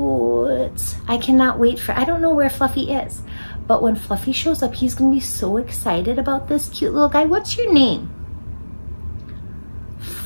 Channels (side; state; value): both; inverted; correlation -1.00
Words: I cannot wait for, I don't know where Fluffy is, but when Fluffy shows up, he's gonna be so excited about this cute little guy. What's your name?